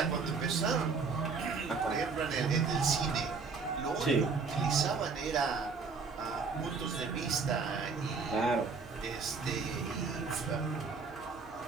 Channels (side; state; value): left; quieter; 4.9 dB